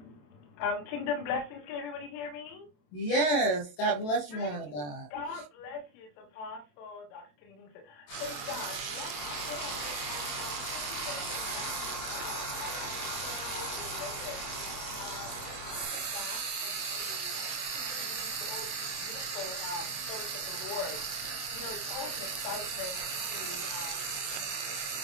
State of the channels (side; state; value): right; late; 27 ms